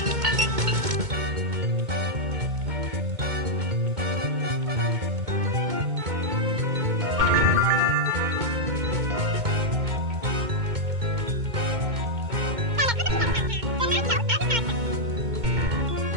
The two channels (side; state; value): left; late; 2.2 ms